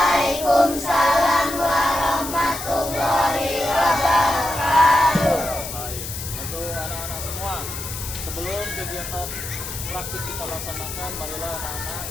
warahmatullahi wabarakatuh. Baik, untuk anak-anak semua, sebelum kegiatan praktik kita laksanakan, marilah anak-anak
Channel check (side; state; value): left; noise; hiss, 8 dB below the sound